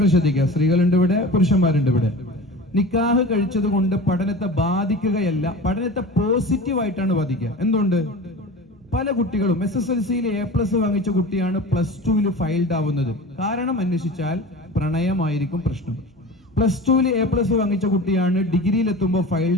ശ്രദ്ധിക്കുക, സ്ത്രീകളുണ്ട് ഇവിടെ, പുരുഷന്മാരുണ്ട് ഇവിടെ. നിക്കാഹ് കഴിച്ചത് കൊണ്ട് പഠനത്തെ ബാധിക്കുകയല്ല, പഠനത്തെ പോസിറ്റീവായിട്ടാണ് ബാധിക്കുക. എന്തുകൊണ്ട്? പല കുട്ടികളും SSLCയിൽ A+ വാങ്ങിച്ച കുട്ടിയാണ് +2ൽ ഫെയിൽഡ് ആവുന്നത്. കാരണം അന്വേഷിച്ചാൽ പ്രണയമായിരിക്കും പ്രശ്നം. +2ൽ A+ വാങ്ങിച്ച കുട്ടിയാണ് ഡിഗ്രിയിൽ എത്തുമ്പോൾ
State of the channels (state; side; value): normal; both; correlation 0.35